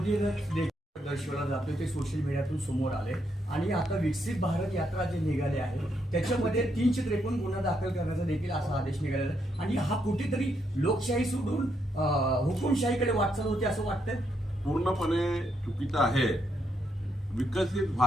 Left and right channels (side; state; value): both; normal; correlation 0.77